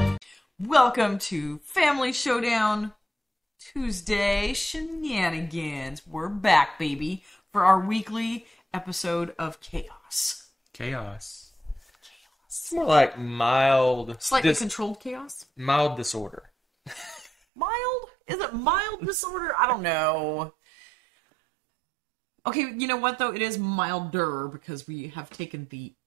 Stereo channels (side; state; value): left; drops out; at 17.3 s